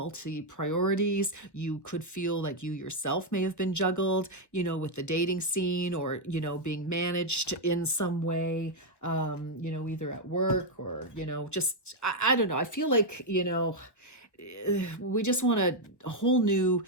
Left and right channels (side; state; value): right; late; 1.1 ms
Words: priorities. You could feel like you yourself may have been juggled, with the dating scene or, being managed in some way, either at work or, just, I don't know. I feel like, we just want a whole new